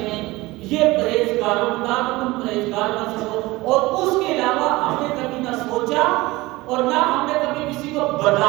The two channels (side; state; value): left; quieter; 20.5 dB